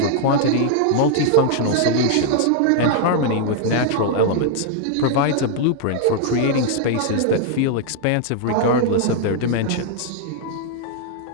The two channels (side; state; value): both; different; correlation 0.00